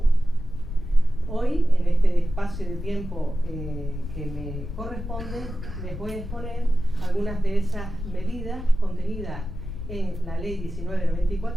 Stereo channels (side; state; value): left; noise; rumble, 8 dB below the sound